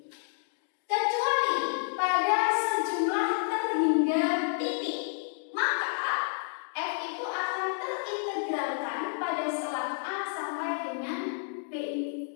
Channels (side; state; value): right; silent; digital silence